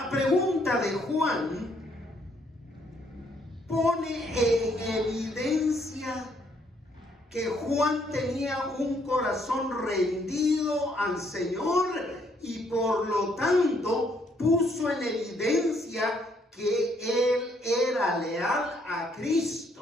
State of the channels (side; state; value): both; normal; correlation 0.69